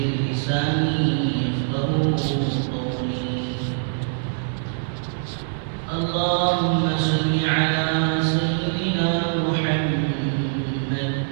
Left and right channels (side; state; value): left; silent; digital silence